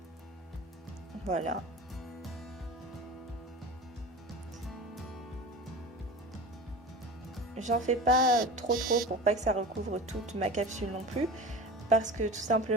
Voilà. J'en fais pas trop pour pas que ça recouvre toute ma capsule non plus. Parce que tout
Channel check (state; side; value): normal; both; correlation 0.33